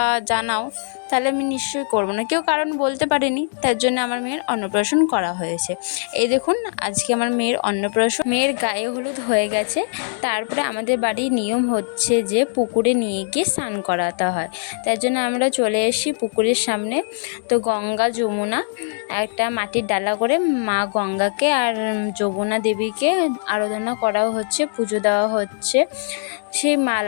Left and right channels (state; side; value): silent; right; digital silence